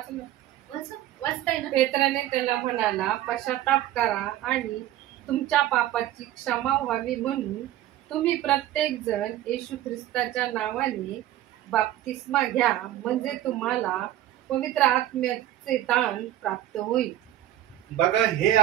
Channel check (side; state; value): left; quieter; 13.5 dB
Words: वाचताय ना. पेत्राने त्याला म्हणाला, पश्चाताप करा आणि तुमच्या पापाची क्षमा व्हावी म्हणून तुम्ही प्रत्येक जण येशू ख्रिस्ताच्या नावाने बाप्तिस्मा घ्या, म्हणजे तुम्हाला पवित्र आत्म्याचे दान प्राप्त होईल. बघा, हे